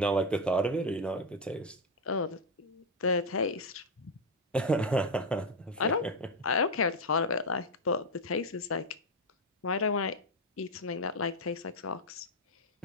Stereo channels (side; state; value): both; normal; correlation 0.06